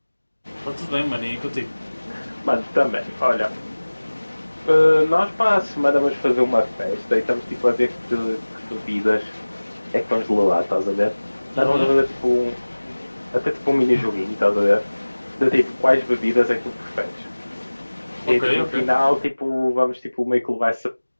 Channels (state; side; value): inverted; both; correlation -1.00